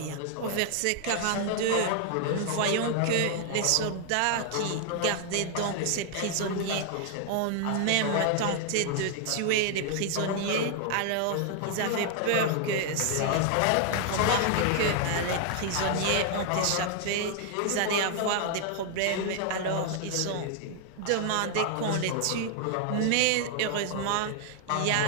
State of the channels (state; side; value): different; both; correlation 0.00